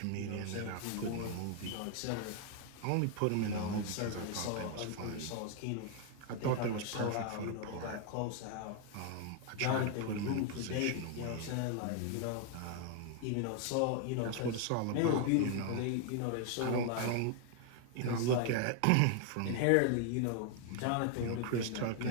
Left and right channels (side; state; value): both; different; correlation 0.01